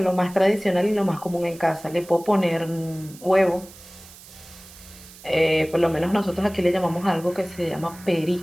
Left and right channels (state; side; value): noise; right; hiss, 20 dB below the sound